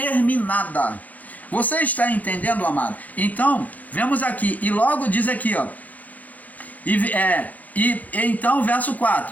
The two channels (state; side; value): late; right; 0.075 ms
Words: Você está entendendo, amado? Então, vemos aqui, e logo diz aqui, ó. Então, verso